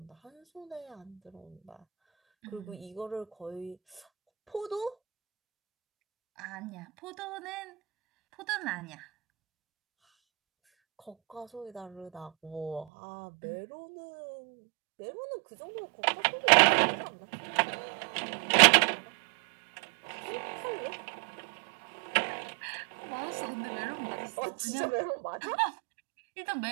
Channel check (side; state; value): left; drops out; at 12.9 s